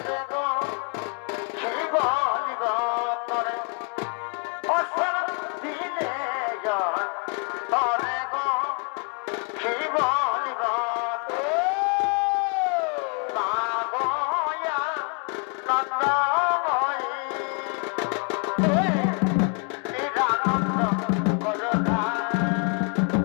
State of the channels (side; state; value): right; quieter; 37.7 dB